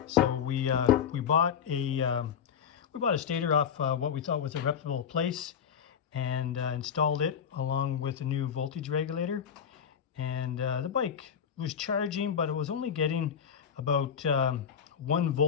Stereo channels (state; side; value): quieter; right; 7.8 dB